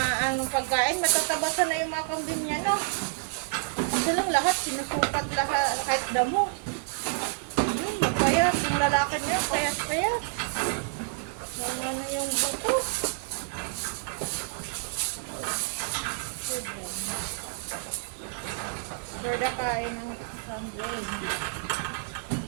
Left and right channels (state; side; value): quieter; left; 36.8 dB